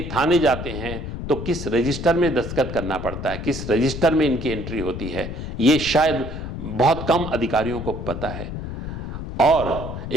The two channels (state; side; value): noise; left; rumble, 7 dB below the sound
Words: थाने जाते हैं तो किस रजिस्टर में दस्तखत करना पड़ता है, किस रजिस्टर में इनकी एंट्री होती है, ये शायद बहुत कम अधिकारियों को पता है। और